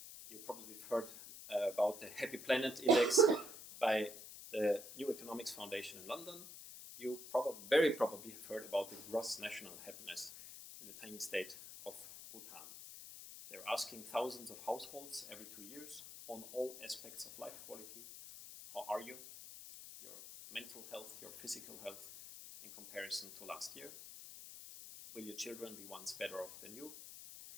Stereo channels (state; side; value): noise; left; hiss, 12 dB below the sound